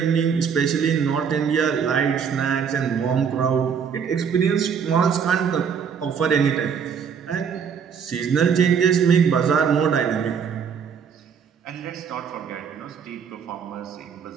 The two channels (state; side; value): quieter; left; 6.9 dB